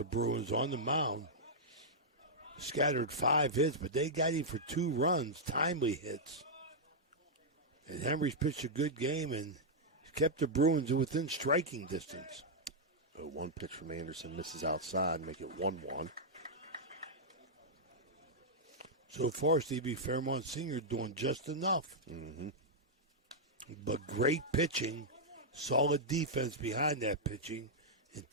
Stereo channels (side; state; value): both; normal; correlation -0.07